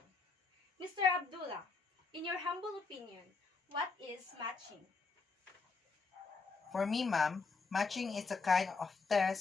Mr. Abdullah, in your humble opinion, what is matching? For me, ma'am, matching is a kind of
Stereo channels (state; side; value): quieter; right; 4.4 dB